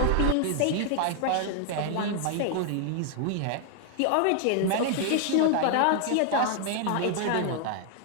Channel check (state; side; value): different; both; correlation 0.00